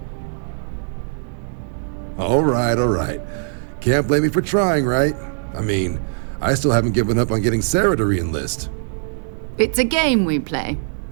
All right. Can't blame me for trying, right? I mean, I still haven't given up on getting Sarah to re-enlist. It's a game we play.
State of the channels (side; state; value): left; silent; digital silence